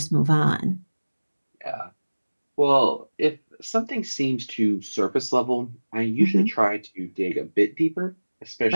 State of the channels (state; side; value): inverted; both; correlation -1.00